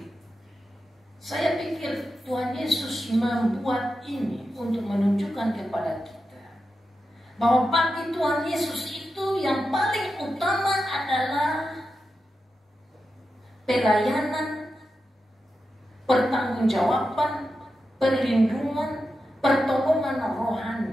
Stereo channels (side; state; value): both; normal; correlation 0.90